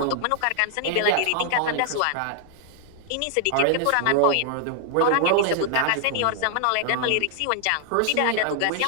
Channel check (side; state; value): both; different; correlation 0.00